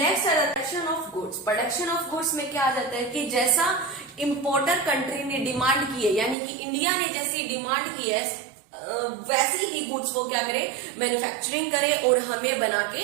आ जाता है production of goods. Production of goods में क्या आ जाता है कि जैसा इंपोर्टर कंट्री ने डिमांड की है, यानी कि इंडिया ने जैसी डिमांड की है वैसी ही गुड्स वो क्या करे? मैन्युफैक्चरिंग करे और हमें बना के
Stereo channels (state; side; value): drops out; left; at 6.4 s